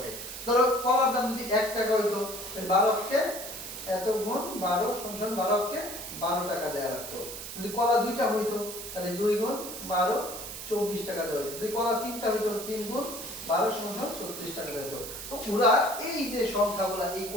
ধরো কলার দাম যদি 1 টাকা হইতো, তাহলে 12 কে এত গুণ 12 সমান 12 কে 12 টাকা দেয়া লাগতো। যদি কলা দুইটা হইতো তাহলে 2 গুণ 12 24 টাকা দেওয়া হতো। যদি কলা তিনটা হইতো 3 গুণ 12 সমান 36 টাকা দেওয়া হতো। তো ওরা এই যে সংখ্যাগুলা, এই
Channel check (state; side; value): noise; right; hiss, 9 dB below the sound